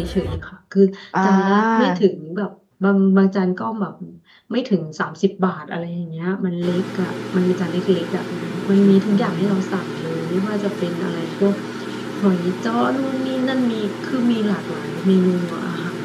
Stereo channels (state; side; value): identical; both; correlation 1.00